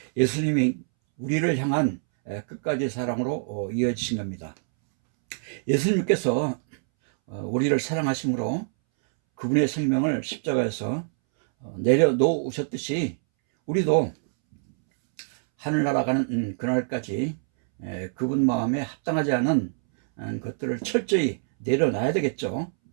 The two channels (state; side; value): silent; left; 62 dB below the other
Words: 예수님이 우리를 향한 끝까지 사랑으로 이어지신 겁니다. 예수님께서 우리를 사랑하심으로 그분의 생명을 십자가에서 내려놓으셨듯이, 우리도 하늘나라 가는 그날까지 그분 마음에 합당하지 않은 것들을 철저히 내려놔야 되겠죠.